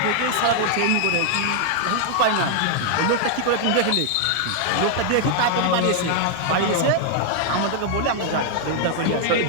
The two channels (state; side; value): different; both; correlation -0.01